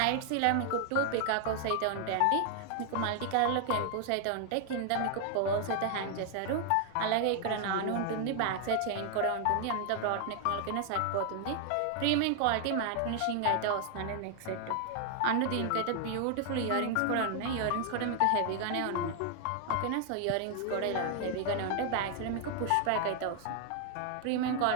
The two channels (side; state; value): both; different; correlation 0.00